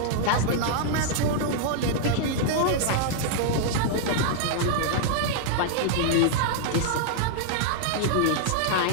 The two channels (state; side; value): different; both; correlation -0.01